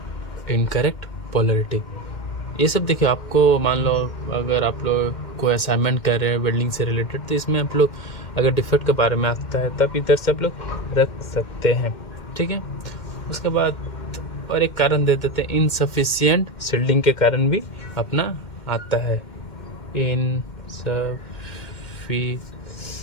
इनकरेक्ट पोलरिटी, ये सब देखिए, आपको मान लो अगर आप लोग कोई असाइनमेंट कर रहे हैं वेल्डिंग से रिलेटेड तो इसमें आप लोग अगर डिफेक्ट के बारे में आता है तब इधर से आप लोग रख सकते हैं, ठीक है। उसके बाद और एक कारण दे देते हैं, इनसफिशियंट सील्डिंग के कारण भी अपना आता है, इनसफिशियंट,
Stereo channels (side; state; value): right; late; 2.1 ms